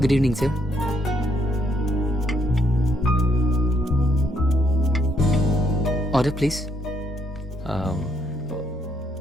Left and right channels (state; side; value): normal; both; correlation 0.71